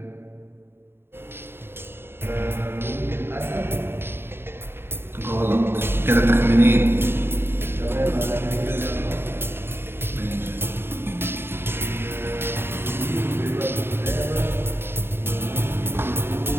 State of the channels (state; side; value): late; left; 0.11 ms